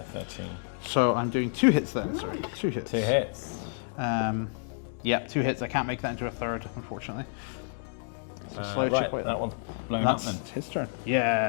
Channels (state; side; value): silent; right; digital silence